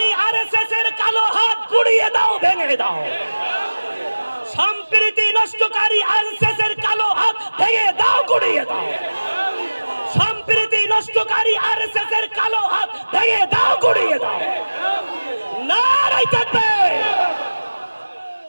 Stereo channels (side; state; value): both; inverted; correlation -1.00